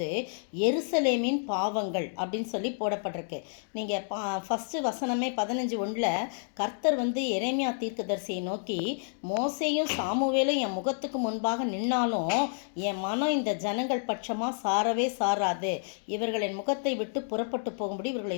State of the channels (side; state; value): right; silent; digital silence